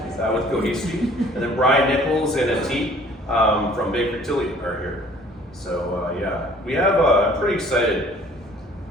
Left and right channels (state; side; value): normal; both; correlation 0.54